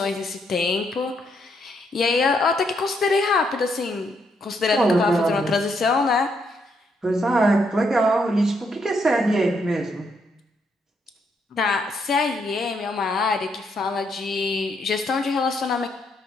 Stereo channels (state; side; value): normal; both; correlation 0.75